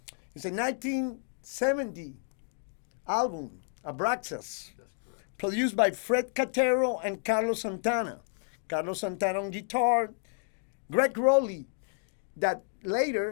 It's a 1970 album, Abraxas. That's correct. Produced by Fred Catero and Carlos Santana. Carlos Santana on guitar, Greg Rowley, that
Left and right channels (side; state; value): right; silent; digital silence